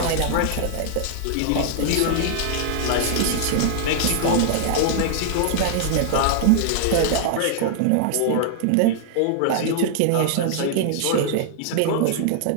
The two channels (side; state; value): both; different; correlation -0.01